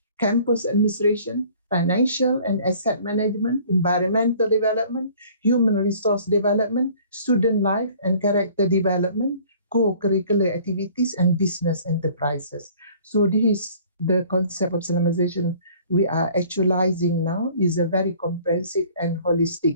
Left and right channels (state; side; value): inverted; both; correlation -0.53